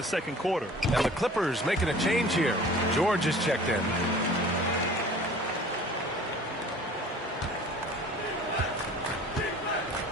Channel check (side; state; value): both; normal; correlation 0.46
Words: second quarter. And the Clippers making a change here. George is checked in.